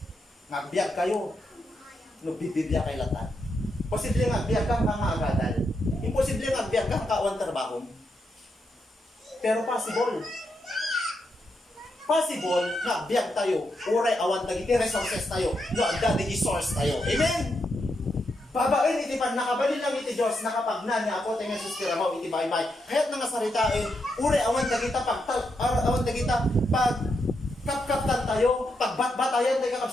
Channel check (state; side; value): normal; both; correlation 0.82